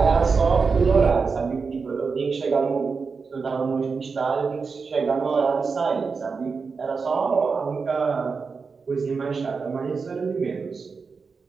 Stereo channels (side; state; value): left; quieter; 5.0 dB